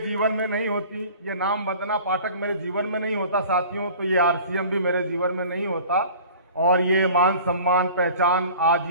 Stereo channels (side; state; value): both; inverted; correlation -0.44